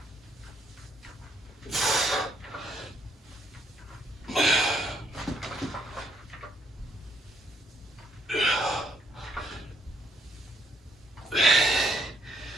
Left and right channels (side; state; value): both; normal; correlation 0.70